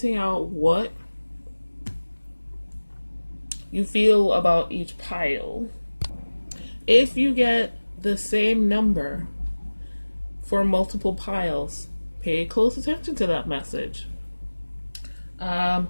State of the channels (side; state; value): both; inverted; correlation -1.00